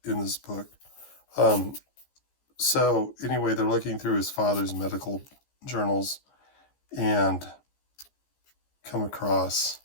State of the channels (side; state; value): right; late; 15 ms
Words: book. So anyway, they're looking through his father's medical journals and come across